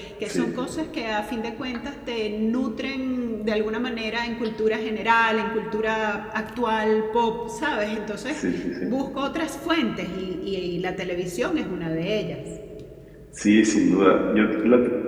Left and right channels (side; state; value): both; identical; correlation 1.00